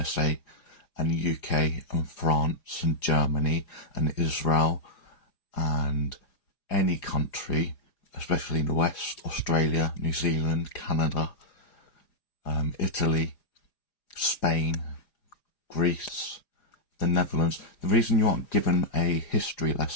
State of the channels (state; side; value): late; right; 4.9 ms